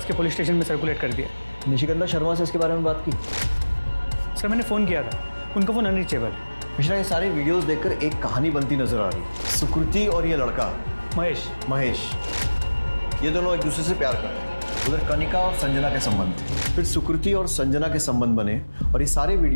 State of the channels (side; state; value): both; inverted; correlation -1.00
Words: के पुलिस स्टेशन में सर्कुलेट कर दिया। निशिगंधा शर्मा से इसके बारे में बात की? सर मैंने फ़ोन किया था, उनका फ़ोन अनरीचेबल है। मिश्रा ये सारे वीडियोस देखकर एक कहानी बनती नजर आ रही है। सुकृति और ये लड़का महेश, ये दोनों एक दूसरे से प्यार करते हैं। उधर कनिका और संजना के संबंध थे, फिर सुकृति और संजना के संबंध बने और ये सारे